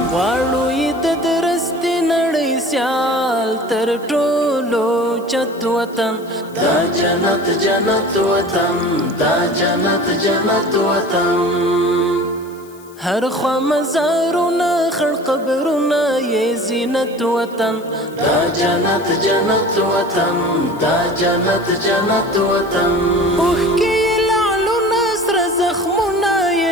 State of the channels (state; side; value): noise; left; hiss, 25 dB below the sound